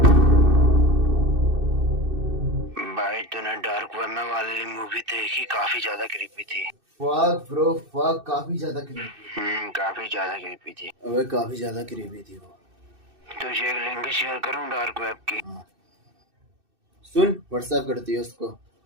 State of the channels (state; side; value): late; left; 2.6 ms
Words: भाई तूने dark web में वाली movie देखी? काफी ज्यादा creepy थी। फक ब्रो फक, काफी ज्यादा क्रीपी। काफी ज्यादा क्रीपी थी। अबे काफी ज्यादा क्रीपी थी वो। तुझे एक लिंक शेयर करूं डार्क वेब की? सुन, व्हाट्सएप करती है उसको।